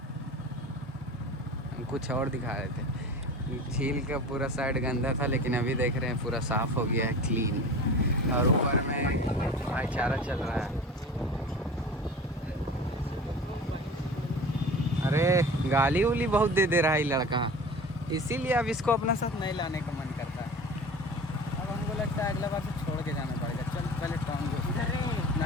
हम कुछ और दिखा रहे थे। झील का पूरा साइड गंदा था, लेकिन अभी देख रहे हैं पूरा साफ हो गया है, क्लीन। और ऊपर में भाईचारा चल रहा है। अरे गाली उली बहुत दे दे रहा है ये लड़का, इसीलिए अब इसको अपने साथ नहीं लाने का मन करता है। अब हमको लगता है अगला बार से छोड़ के जाना पड़ेगा। चल पहले टाउन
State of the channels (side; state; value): both; normal; correlation 0.37